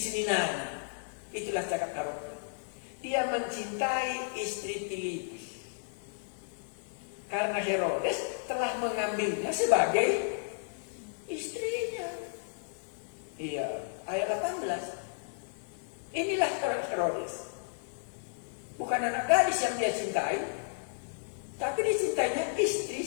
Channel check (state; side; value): silent; right; digital silence